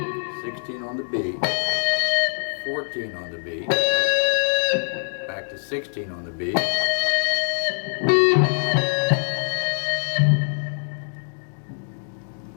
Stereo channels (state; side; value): silent; right; digital silence